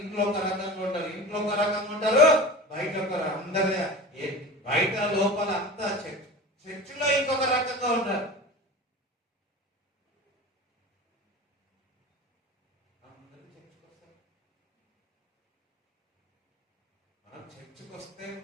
ఇంట్లో ఒక రకంగా ఉంటారు, ఇంట్లో ఒక రకంగా ఉంటారు, బయట ఒక అందరి బయట లోపల అంతా చర్చిలో ఇంకొక రకంగా ఉంటారు. మనం చర్చికి వస్తే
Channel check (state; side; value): normal; both; correlation 0.33